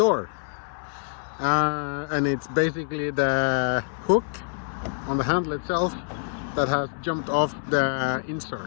And it's basically the hook on the handle itself that has jumped off the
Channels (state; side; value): silent; right; 61 dB below the other